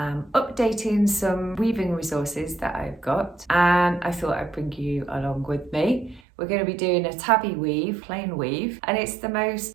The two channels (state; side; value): drops out; left; at 6.2 s